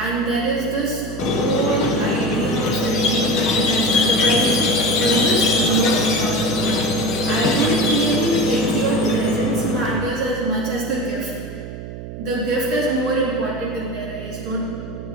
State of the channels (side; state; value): right; noise; hum, 10 dB below the sound